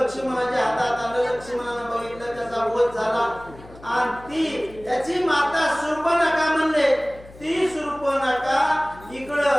हातात आलं. लक्ष्मणानं बघितलं त्याचा वध झाला आणि ती त्याची माता शूर्पणखा म्हणले. ती शूर्पणखा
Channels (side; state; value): left; noise; hum, 20 dB below the sound